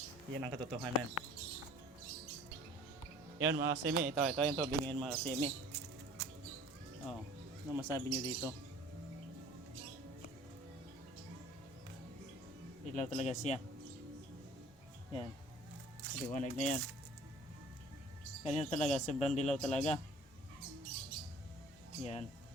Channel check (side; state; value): both; normal; correlation 0.49